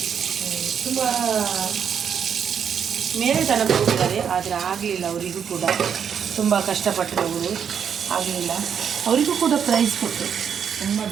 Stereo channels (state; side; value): quieter; left; 7.7 dB